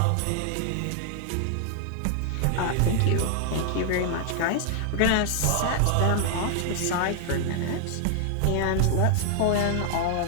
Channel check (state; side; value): different; both; correlation 0.00